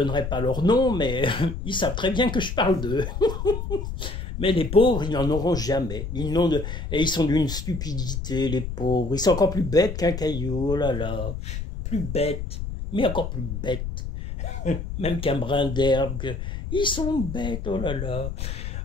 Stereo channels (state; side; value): noise; left; rumble, 5 dB below the sound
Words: pas leur nom, mais ils savent très bien que je parle d'eux. Mais les pauvres, ils n'en auront jamais. Et ils sont d'une stupidité, les pauvres. Ils sont encore plus bêtes qu'un caillou, oh là là. Plus bêtes, mais encore plus bêtes. même qu'un brin d'herbe. Ils sont bêtes, oh là là.